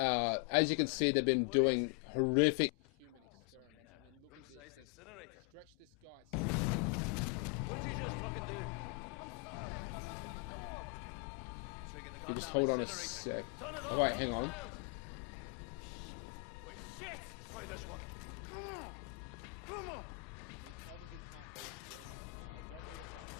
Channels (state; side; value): quieter; right; 28.7 dB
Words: you can see, they've been doing horrific human experiments. I mean, look at this. They've stretched this guy's skin open. What did you just fucking do? You just hold on a sec. Oh, wait, hang on. Wait, shit! Let's try this one. They obviously can't read German. I don't know what that